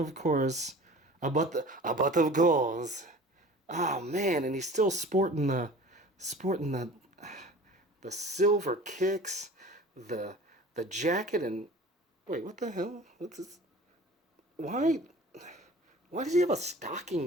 course, a butt of gauze. Oh man, and he's still sporting the silver kicks, the jacket, and wait, what the hell? What's this? Why does he have a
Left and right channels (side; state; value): both; normal; correlation 0.42